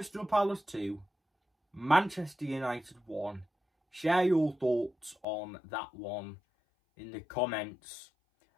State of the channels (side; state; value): right; drops out; at 5.2 s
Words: Palace 2, Manchester United 1. Share your thoughts on that one in the comments.